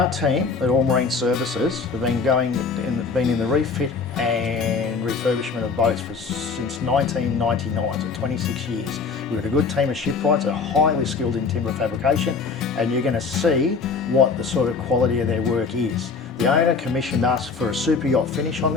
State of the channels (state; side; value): quieter; right; 4.8 dB